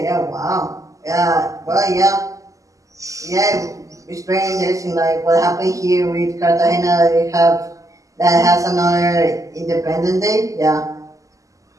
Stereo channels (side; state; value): left; late; 0.16 ms